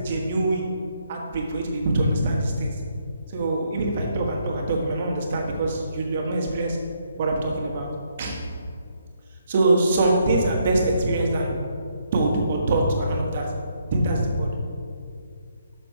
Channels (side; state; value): both; inverted; correlation -0.73